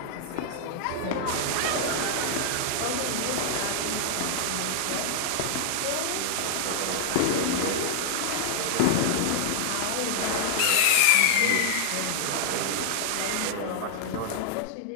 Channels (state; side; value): different; both; correlation -0.01